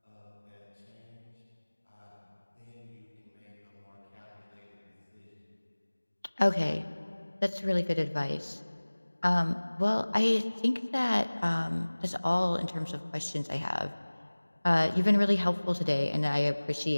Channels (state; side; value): inverted; both; correlation -1.00